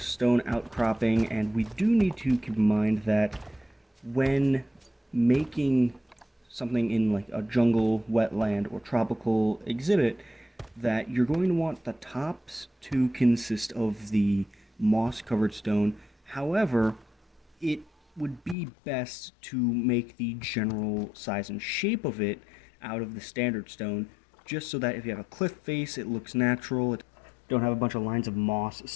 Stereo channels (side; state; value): right; drops out; at 18.6 s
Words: stone outcropping, and we do need to keep in mind that when making something in like a jungle, wetland, or tropical exhibit, that you're going to want the tops to consist of the moss-covered stone. However, it would be best to make the general size and shape of it out of the standard stone, just so that if you have a cliff face, it looks natural. It don't have a bunch of lines of moss